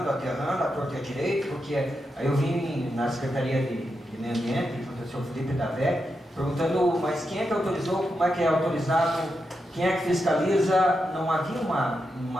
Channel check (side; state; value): both; normal; correlation 0.86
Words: a torta e a direito, porque aí eu vim na Secretaria de Meio Ambiente, com o professor Felipe Davé, perguntando, mas quem é que autorizou, como é que é autorizado, quem é que fiscaliza? Não havia